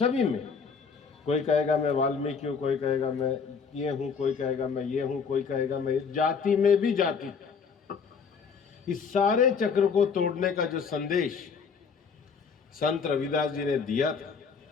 में कोई कहेगा मैं वाल्मीकि हूँ, कोई कहेगा मैं ये हूँ, कोई कहेगा मैं ये हूँ, कोई कहेगा मैं, जाति में भी जाति। इस सारे चक्र को तोड़ने का जो संदेश संत रविदास जी ने दिया था,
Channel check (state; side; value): quieter; right; 5.7 dB